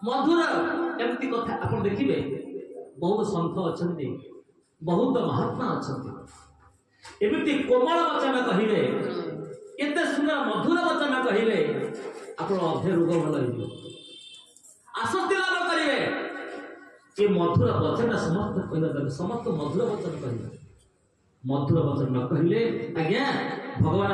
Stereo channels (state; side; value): identical; both; correlation 1.00